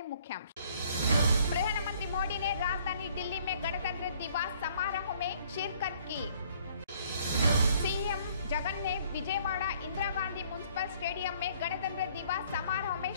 मुख्यांश। प्रधानमंत्री मोदी ने राजधानी दिल्ली में गणतंत्र दिवस समारोह में शिरकत की। सीएम जगन ने विजयवाड़ा इंदिरा गांधी म्युनिसिपल स्टेडियम में गणतंत्र दिवस समारोह में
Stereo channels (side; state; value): both; inverted; correlation -0.61